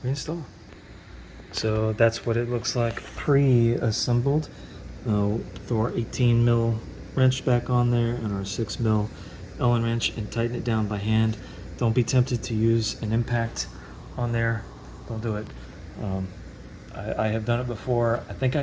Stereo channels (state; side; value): identical; both; correlation 1.00